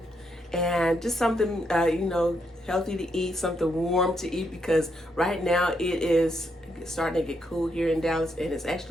and just something, healthy to eat, something warm to eat because right now it is starting to get cool here in Dallas and it's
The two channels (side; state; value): both; normal; correlation 0.78